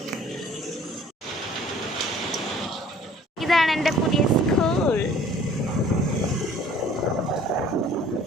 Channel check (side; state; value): both; normal; correlation 0.53